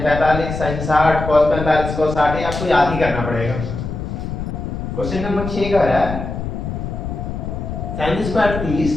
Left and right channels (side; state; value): left; noise; rumble, 5 dB below the sound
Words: 45, sine 60, cos 45, cos 60, ये आपको याद ही करना पड़ेगा। क्वेश्चन नंबर 6 कह रहा है sine square 30